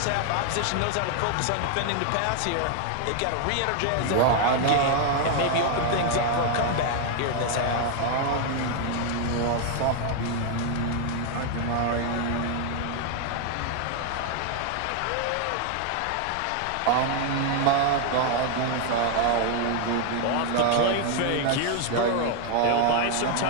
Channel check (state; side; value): different; both; correlation 0.00